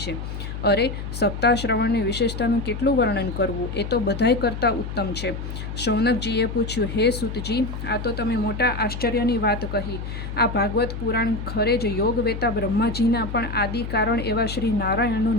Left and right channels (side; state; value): left; noise; hum, 7 dB below the sound